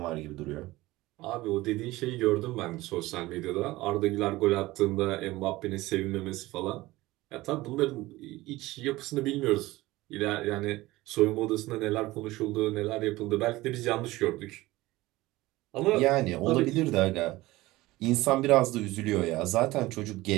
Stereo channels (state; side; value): quieter; left; 18.8 dB